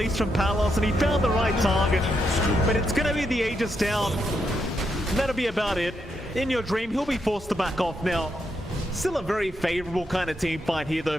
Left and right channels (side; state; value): both; normal; correlation 0.81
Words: from Palos, and he found the right target. But it's going to be the Aegis down. And that'll be about it. In Your Dream, he'll be forced to back off now. Still a very favorable kind of team fight here though